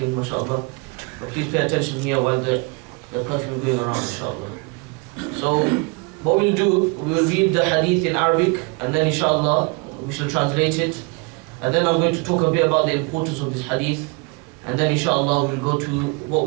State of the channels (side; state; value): left; quieter; 30.2 dB